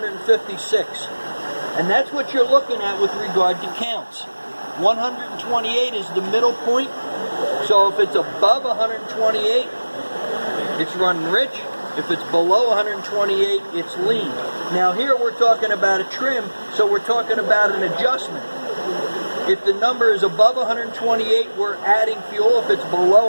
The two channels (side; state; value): both; inverted; correlation -1.00